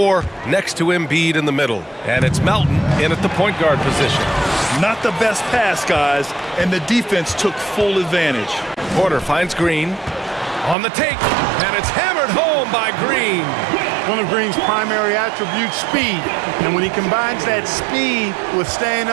next to Embiid in the middle. And it's Melton in at the point guard position. Not the best pass, guys, and the defense took full advantage. Porter finds Green on the take, and it's hammered home by Green. One of Green's primary attributes, speed. And when he combines that speed with staying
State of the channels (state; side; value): drops out; left; at 10.8 s